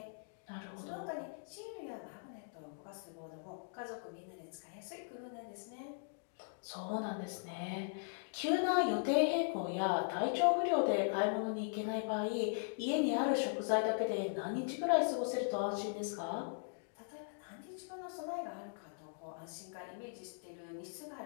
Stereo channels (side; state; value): right; silent; digital silence